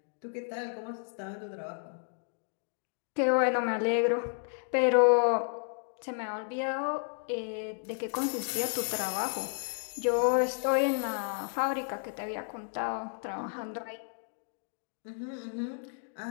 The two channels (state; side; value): silent; right; 56 dB below the other